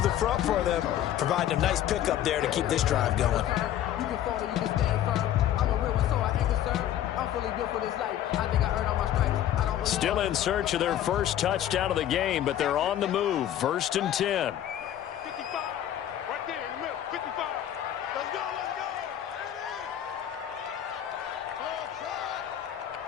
the front for them, providing a nice pickup there to keep this drive going. Still in search of their first touchdown of the game, but they're on the move. 1st and 10.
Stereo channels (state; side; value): quieter; right; 11.4 dB